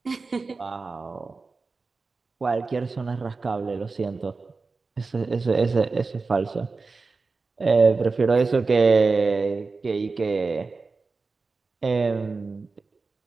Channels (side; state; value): left; quieter; 4.1 dB